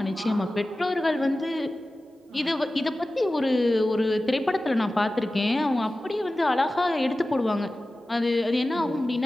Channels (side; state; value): both; normal; correlation 0.96